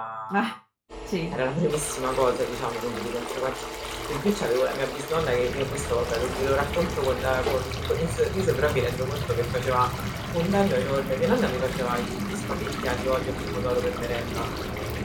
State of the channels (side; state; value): both; identical; correlation 1.00